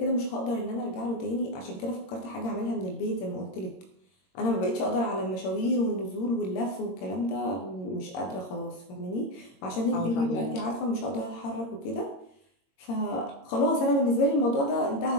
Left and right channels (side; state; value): right; late; 22 ms